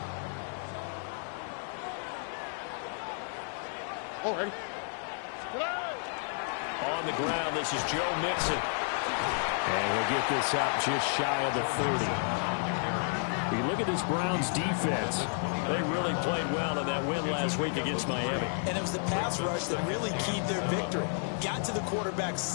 Oh, ready? On the ground, this is Joe Mixon. And he'll get this up just shy of the 30. You look at this Browns defense. They really played well in that win last week against Miami. And it was the pass rush that really keyed their victory. Got to the quarterback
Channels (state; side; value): silent; right; 57 dB below the other